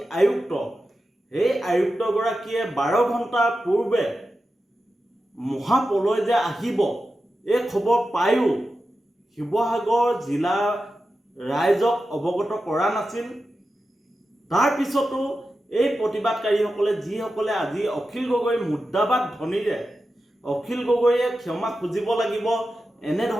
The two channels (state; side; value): normal; both; correlation 0.91